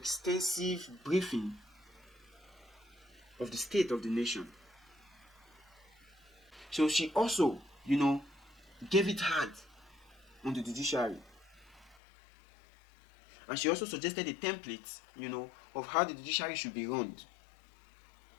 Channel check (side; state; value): right; drops out; at 12.0 s